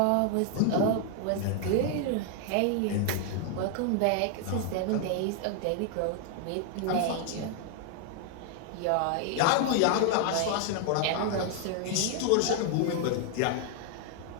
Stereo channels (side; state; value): both; different; correlation 0.00